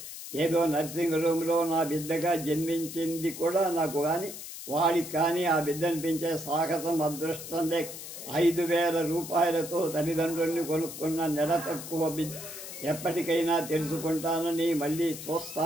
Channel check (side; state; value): left; noise; hiss, 10 dB below the sound